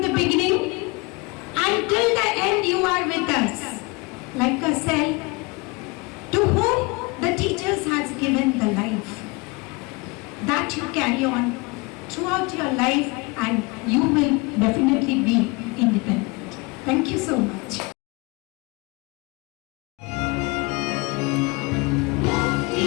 the beginning. Until the end you are with us, like a cell to whom the teachers has given the life. That you carry on throughout your life, and you will definitely be independent. Thank you so much.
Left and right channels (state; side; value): quieter; right; 26.6 dB